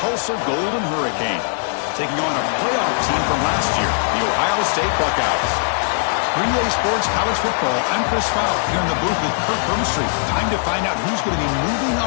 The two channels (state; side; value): silent; right; 66 dB below the other